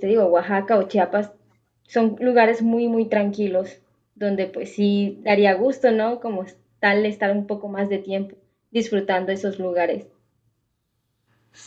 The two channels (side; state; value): both; identical; correlation 1.00